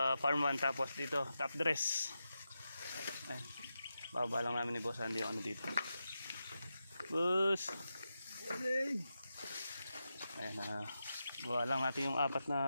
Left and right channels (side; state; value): both; inverted; correlation -0.89